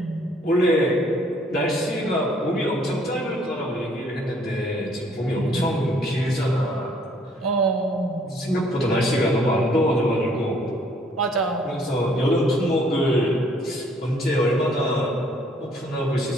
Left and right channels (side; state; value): both; normal; correlation 0.62